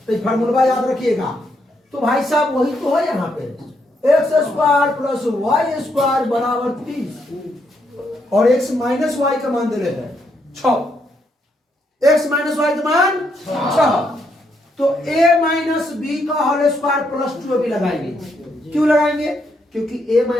तो ये फार्मूला याद रखिएगा। तो भाई साहब वही तो है यहाँ पे, X square plus Y square बराबर 30, और एक्स माइनस वाई का मान दे रहे हैं 6। एक्स माइनस वाई का मान 6, तो a माइनस बी का होल स्क्वायर प्लस 2ab लगाएंगे। क्यों लगाएंगे? क्योंकि a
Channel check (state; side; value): normal; both; correlation 0.76